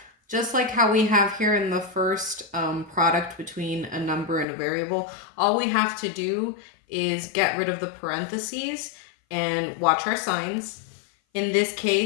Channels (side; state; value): right; drops out; at 4.5 s